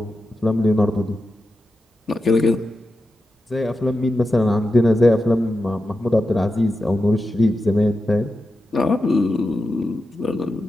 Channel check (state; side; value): normal; both; correlation 0.90